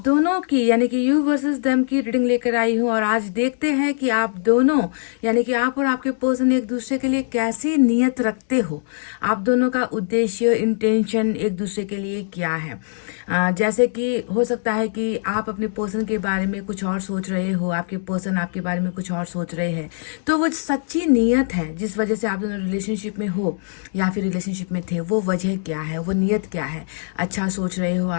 दोनों की यानी कि यू वर्सेस देम की रीडिंग लेकर आई हूँ और आज देखते हैं कि आप दोनों यानी कि आप और आपके पर्सन एक दूसरे के लिए कैसी नीयत रखते हो। आप दोनों का उद्देश्य, इंटेंशन एक दूसरे के लिए क्या है। जैसे कि हो सकता है कि आप अपने पर्सन के बारे में कुछ और सोच रहे हो, आपके पर्सन आपके बारे में कुछ और सोच रहे हैं। तो वो सच्ची नीयत है जिस वजह से आप दोनों रिलेशनशिप में हो या फिर रिलेशनशिप में थे, वो वजह क्या है, वो नीयत क्या है। अच्छा सोच रहे हो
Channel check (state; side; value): silent; right; digital silence